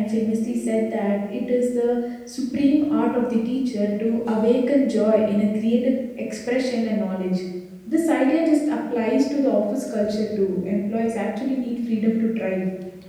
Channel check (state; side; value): identical; both; correlation 1.00